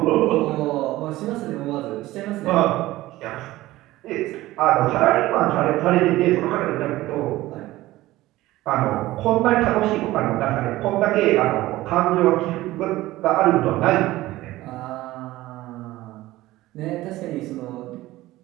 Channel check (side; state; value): left; quieter; 17.1 dB